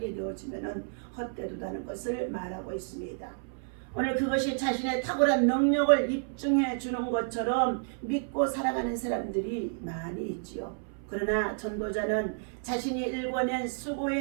되어지면은 헛되도다는 것을 말하고 있습니다. 오늘 그것이 자신의 탁월한 능력을 입증해 주는 것처럼 믿고 살아가는 사람들이 많이 있지요. 그러나 전도자는 자신이 일궈낸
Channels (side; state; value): left; silent; 57 dB below the other